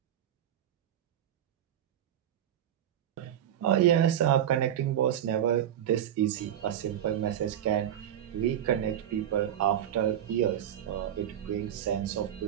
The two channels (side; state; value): left; quieter; 10.5 dB